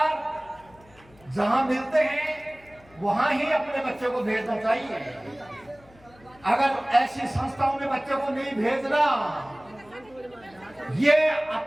जहां मिलते हैं वहां ही अपने बच्चों को भेजना चाहिए। अगर ऐसी संस्थाओं में बच्चों को नहीं भेजना, ये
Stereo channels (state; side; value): noise; left; hum, 27 dB below the sound